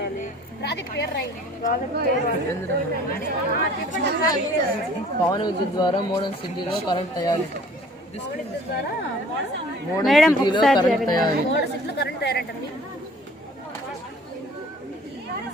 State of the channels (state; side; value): normal; both; correlation 0.51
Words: పవన విద్యుత్ ద్వారా మోడల్ సిటీలో కరెంట్ తయారీ. మేడం కరెంట్ తయారీ.